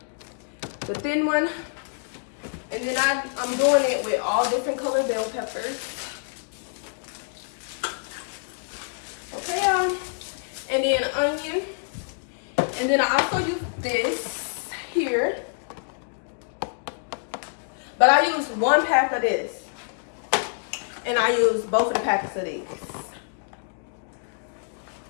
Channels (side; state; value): right; silent; digital silence